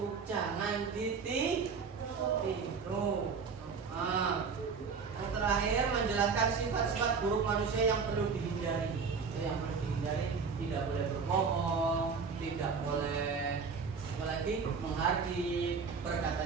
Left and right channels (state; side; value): quieter; left; 5.4 dB